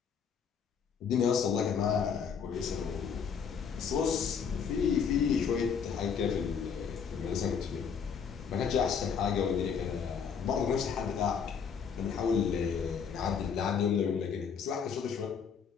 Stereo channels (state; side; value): quieter; right; 6.7 dB